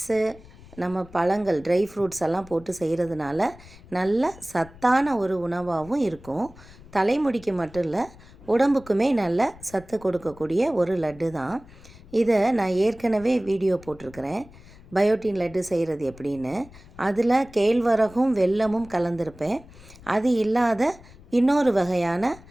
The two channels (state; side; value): noise; left; rumble, 21 dB below the sound